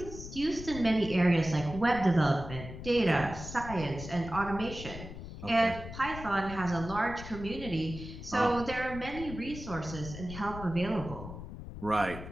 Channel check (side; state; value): left; noise; rumble, 11 dB below the sound